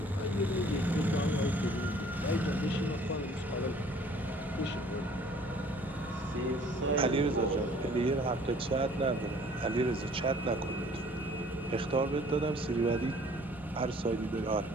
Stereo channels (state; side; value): normal; both; correlation 0.54